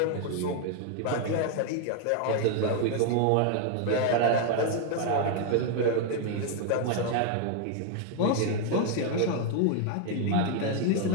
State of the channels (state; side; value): different; both; correlation 0.00